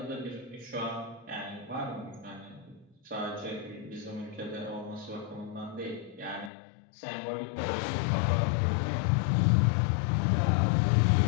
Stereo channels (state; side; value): drops out; right; at 6.5 s